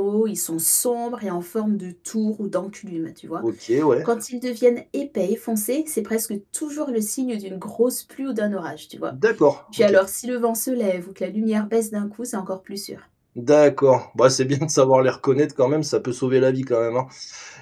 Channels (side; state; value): both; identical; correlation 1.00